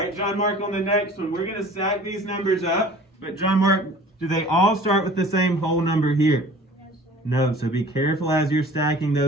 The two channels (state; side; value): normal; both; correlation 0.46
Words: John Mark, on the next one, we're going to stack these numbers up. But John Mark, do they all start with the same whole number here? No, so be careful as you're stacking